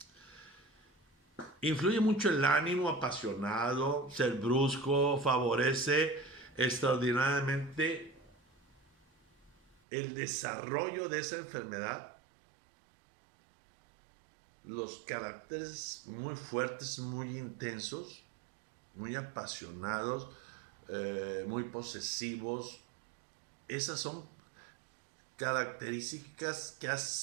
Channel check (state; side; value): drops out; left; at 9.8 s